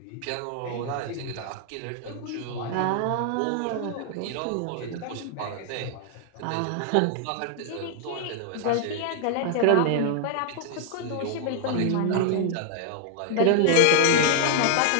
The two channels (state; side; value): different; both; correlation 0.00